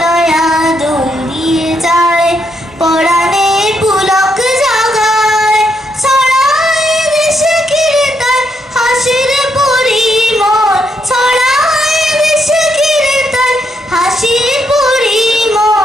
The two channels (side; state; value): both; normal; correlation 0.77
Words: দুল দিয়ে যায় পরাণে পুলক জাগায়। ছড়ায় দেশে কীর্তন হাসির পরিমল। ছড়ায় দেশে কীর্তন হাসির